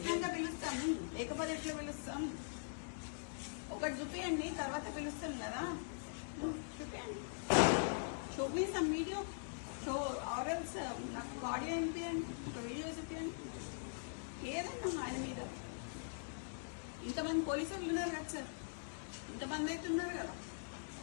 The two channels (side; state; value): right; silent; digital silence